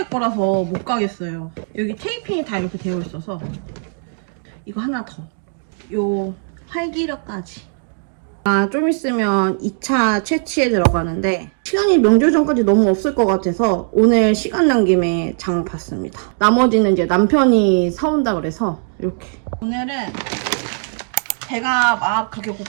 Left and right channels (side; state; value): left; silent; 66 dB below the other